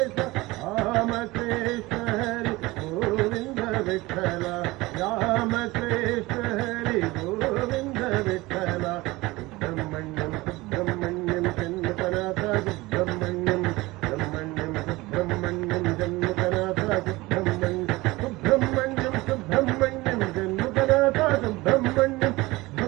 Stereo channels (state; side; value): quieter; left; 20.9 dB